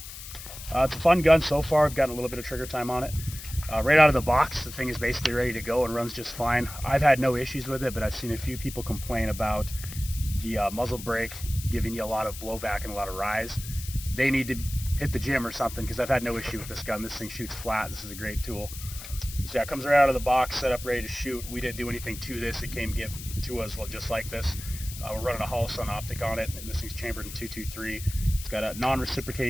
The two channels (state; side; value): noise; left; hiss, 12 dB below the sound